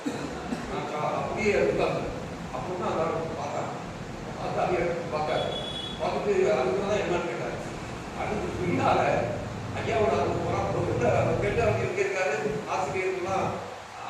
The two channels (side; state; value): both; identical; correlation 1.00